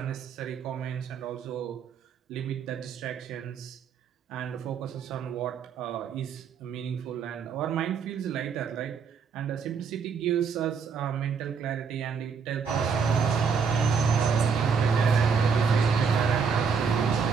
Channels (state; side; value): quieter; left; 6.0 dB